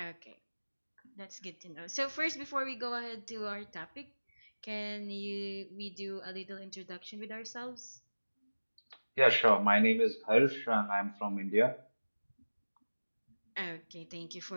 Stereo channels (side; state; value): both; inverted; correlation -1.00